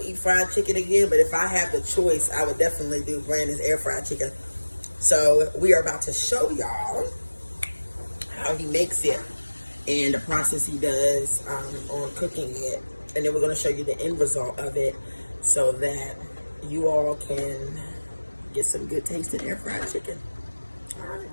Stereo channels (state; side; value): inverted; both; correlation -1.00